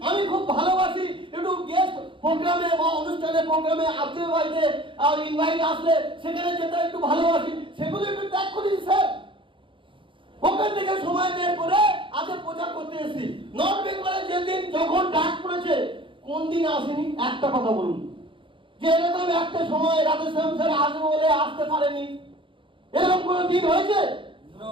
আমি খুব ভালোবাসি একটু গেস্ট প্রোগ্রামে বা অনুষ্ঠানে প্রোগ্রামে আত্মীয় বাড়িতে আর ইনভাইট আসলে সেখানে যেতে একটু ভালোবাসি, সেগুলো একটু ত্যাগ করেছি স্যার। ওখান থেকে সময় বের করে আজকে প্রচার করতে এসেছি। নর্থ বেঙ্গলে যেদিন যখন ডাক পড়েছে, কোন দিন আসেনি একটা কথা বলুন যে এরকম একটা সময় রাধেশ্যাম স্যার আসবে বলে আসতে পারেনি? এরকম কোন দিন হয়েছে?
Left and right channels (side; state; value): left; late; 0.25 ms